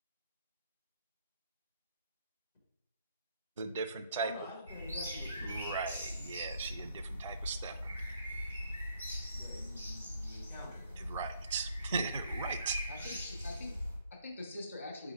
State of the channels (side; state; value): both; inverted; correlation -0.69